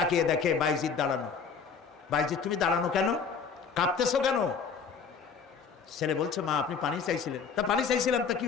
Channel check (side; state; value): right; quieter; 5.9 dB